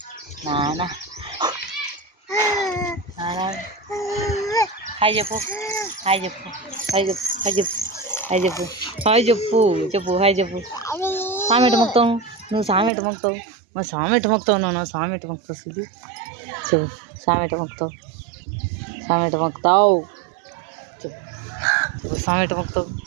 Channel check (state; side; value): drops out; left; at 12.9 s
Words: నాన్న, నాన్న. హాయ్ చెప్పు, హాయ్ చెప్పు, హాయ్ చెప్పు, హాయ్ చెప్పు, హాయ్ చెప్పు, హాయ్ చెప్పు, చెప్పు హాయ్ చెప్పు. సామెట మొక్తావు నువ్వు, సామెట మొక్తావు మా సామెట మొక్తావు, నువ్వు సామెట మొక్తావు. సిద్ధి చెప్పు, సామెట మొక్తావు, సామెట మొక్తావు, చెప్పు చెప్పు, సామెట మొక్తావు,